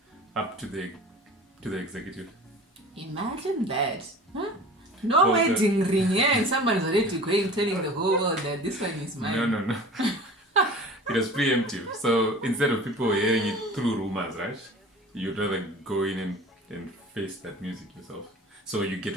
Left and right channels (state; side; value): normal; both; correlation 0.41